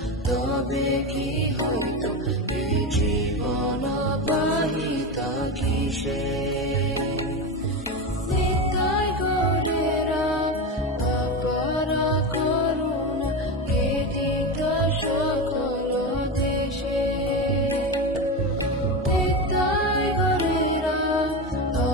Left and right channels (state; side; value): normal; both; correlation 0.19